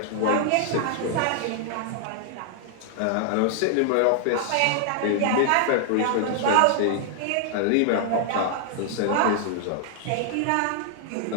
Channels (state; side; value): different; both; correlation -0.01